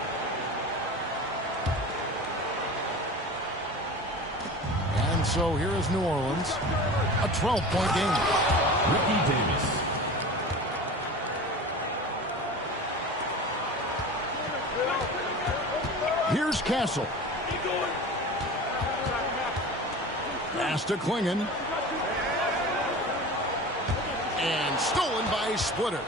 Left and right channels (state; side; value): normal; both; correlation 0.35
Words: And so here is New Orleans. A 12-point game. Ricky Davis. Here's Castle. Pass to Klingon. And stolen by Splitter.